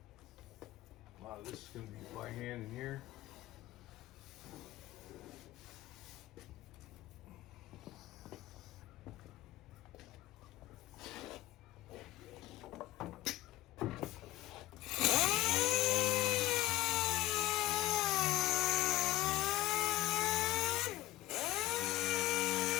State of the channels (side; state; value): right; quieter; 16.3 dB